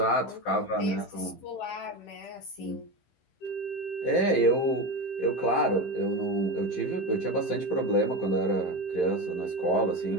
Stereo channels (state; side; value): late; right; 15 ms